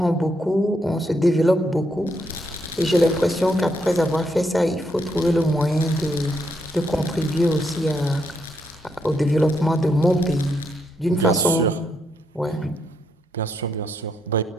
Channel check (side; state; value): both; normal; correlation 0.77